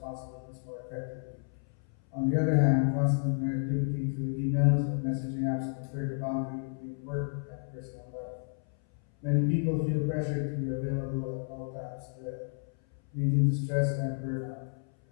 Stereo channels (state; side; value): silent; right; 57 dB below the other